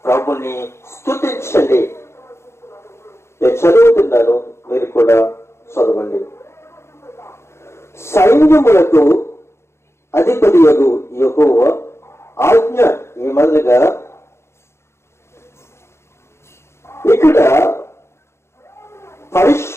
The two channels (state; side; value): late; right; 0.13 ms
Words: ప్రభుని స్తుతించండి. నేను చదువుతున్నాను, మీరు కూడా చదవండి. సైన్యములకు అధిపతియగు యెహోవా ఆజ్ఞ ఏమనగా, ఇక్కడ